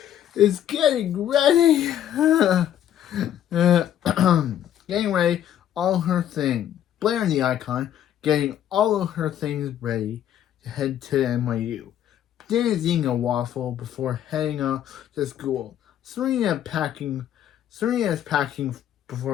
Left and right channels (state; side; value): quieter; right; 10.8 dB